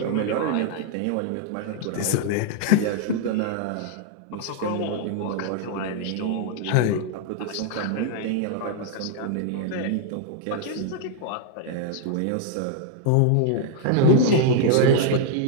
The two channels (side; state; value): both; different; correlation 0.00